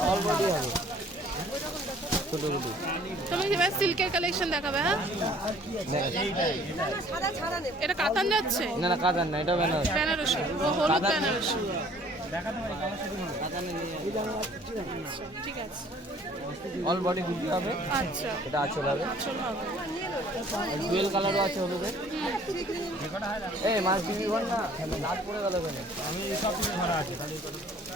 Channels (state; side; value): normal; both; correlation 0.55